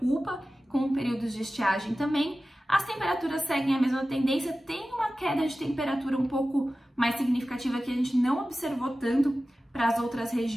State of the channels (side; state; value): both; normal; correlation 0.95